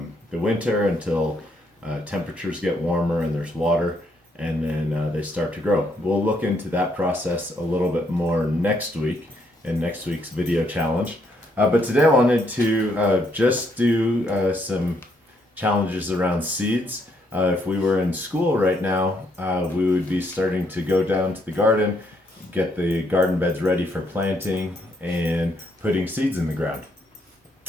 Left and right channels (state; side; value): normal; both; correlation 0.73